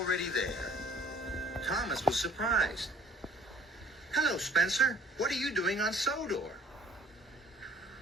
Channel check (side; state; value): both; normal; correlation 0.54